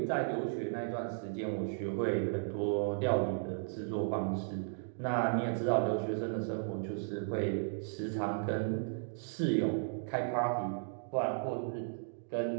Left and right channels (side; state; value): left; silent; digital silence